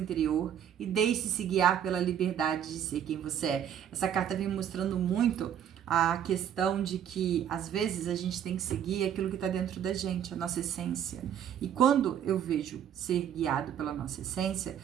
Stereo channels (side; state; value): left; quieter; 9.4 dB